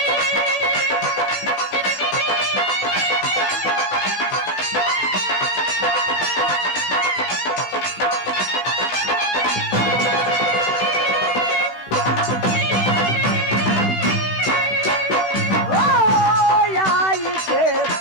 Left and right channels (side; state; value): right; late; 16 ms